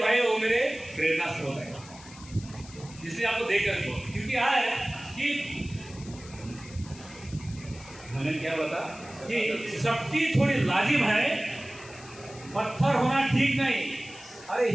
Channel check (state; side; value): noise; left; hiss, 19 dB below the sound